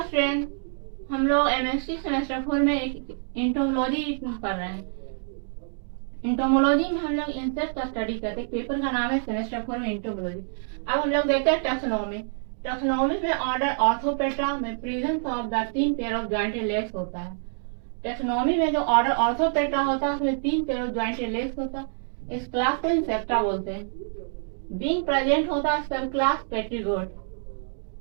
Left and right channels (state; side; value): silent; left; digital silence